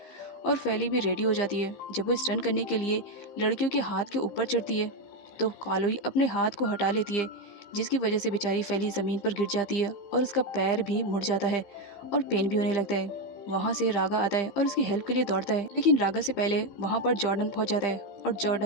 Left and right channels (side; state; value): right; late; 15 ms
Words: और फैली भी रेडी हो जाती है। जब वो स्टंट करने के लिए लड़कियों के हाथ के ऊपर चढ़ती है तो कालोई अपने हाथ को हटा लेती है, जिसकी वजह से बेचारी फैली ज़मीन पर गिर जाती है और उसका पैर भी मुड़ जाता है और पेन भी होने लगता है। वहाँ से रागा आता है और उसकी हेल्प के लिए दौड़ता है, लेकिन रागा से पहले वहाँ पर जॉर्डन पहुँच जाता है और